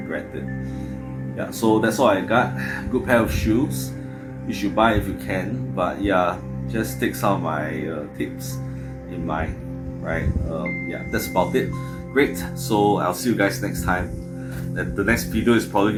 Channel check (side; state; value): both; identical; correlation 1.00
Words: it. Yeah, so that's all I got. Good pair of shoes. You should buy if you can, but yeah, just take some of my tips in mind, right? Yeah, that's about it. Great. So I'll see you guys next time. And the next video is probably